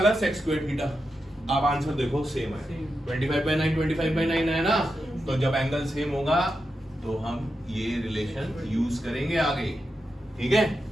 sec स्क्वायर थीटा। अब आंसर देखो सेम है, 25 by 9 25 by 9 है ना? तो जब एंगल सेम होगा तो हम ये रिलेशन यूज करेंगे आगे, ठीक है?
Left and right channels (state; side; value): normal; both; correlation 0.88